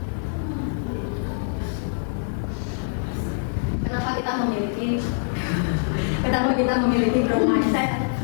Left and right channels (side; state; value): right; silent; digital silence